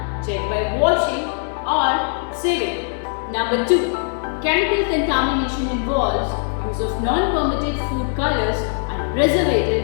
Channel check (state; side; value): silent; right; digital silence